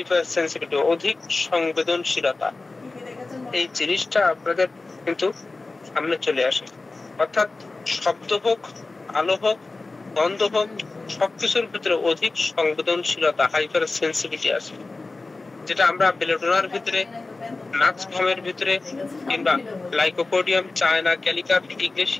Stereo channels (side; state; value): right; quieter; 3.4 dB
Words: সেন্সিটিভিটি, অধিক সংবেদনশীলতা, এই জিনিসটা আপনাদের কিন্তু সামনে চলে আসে। অর্থাৎ শব্দ হোক, আলো হোক, গন্ধ হোক, সবকিছুর ভিতরে অধিক সংবেদনশীলতা, হাইপার সেন্সিটিভিটি আছে, যেটা আমরা বেলেডোনার ভিতরে, নাক্সভমের ভিতরে, কিংবা লাইকোপোডিয়াম, চায়না ক্যালিকা,